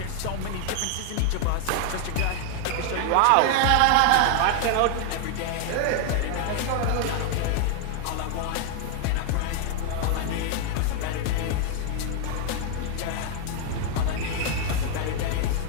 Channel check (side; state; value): both; different; correlation 0.00